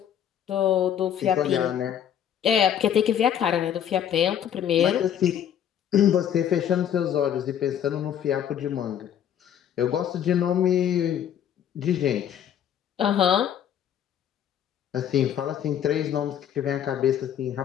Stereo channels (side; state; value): right; quieter; 9.6 dB